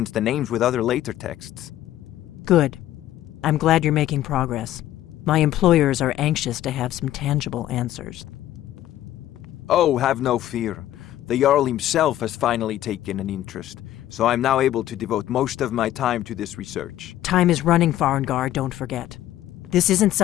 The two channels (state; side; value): quieter; right; 13.3 dB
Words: the names with other later texts. Good. I'm glad you're making progress. My employers are anxious to have some tangible answers. Oh, have no fear. The Jarl himself has finally taken an interest, so I'm now able to devote most of my time to this research. Time is running, Farengar, don't forget. This isn't